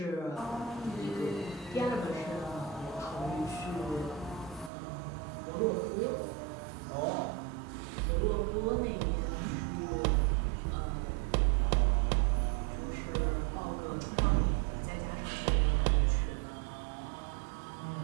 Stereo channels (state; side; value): drops out; left; at 4.7 s